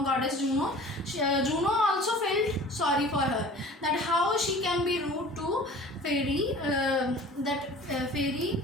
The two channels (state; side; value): normal; both; correlation 0.44